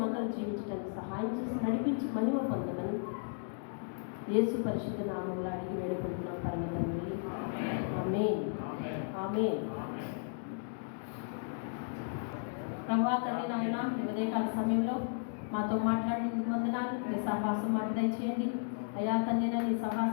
జీవించడానికి సహాయం చేసి నడిపించి మహిమ పొందమని యేసు పరిశుద్ధ నామంలో అడిగి వేడుకుంటున్నాం పరమ తండ్రి. ఆమేన్, ఆమేన్. ప్రభువా తండ్రి నాయన, ఈ ఉదయకాల సమయంలో మాతో మాట్లాడినందుకు వందనాలు. నీ సహవాసం మాకు దయచేయండి అయ్యా తండ్రి. నీ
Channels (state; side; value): silent; right; digital silence